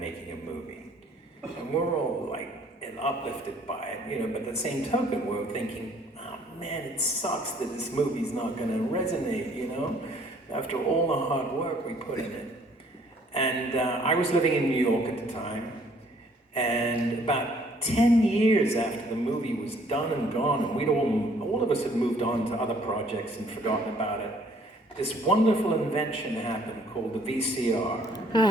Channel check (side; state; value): both; normal; correlation 0.60